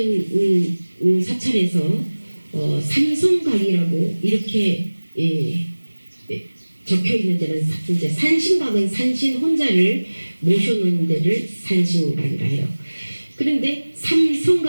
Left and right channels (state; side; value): inverted; both; correlation -1.00